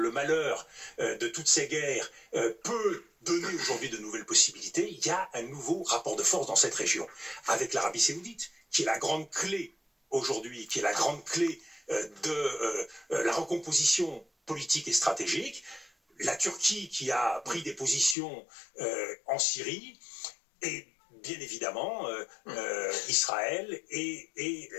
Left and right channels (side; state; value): right; drops out; at 18.2 s